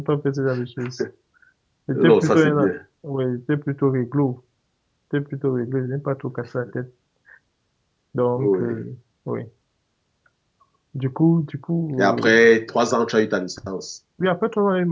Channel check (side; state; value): both; identical; correlation 1.00